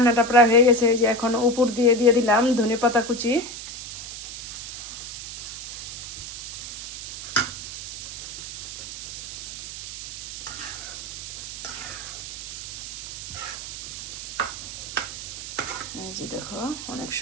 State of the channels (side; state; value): right; noise; hiss, 8 dB below the sound